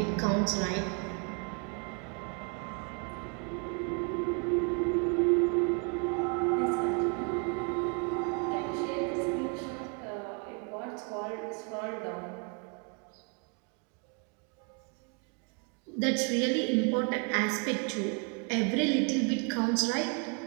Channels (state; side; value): quieter; left; 35.9 dB